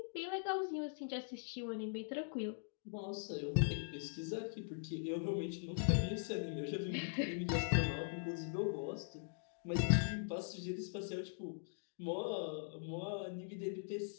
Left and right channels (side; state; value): right; silent; digital silence